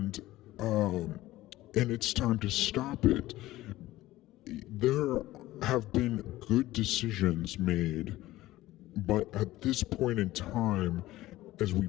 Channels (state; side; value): quieter; right; 16.6 dB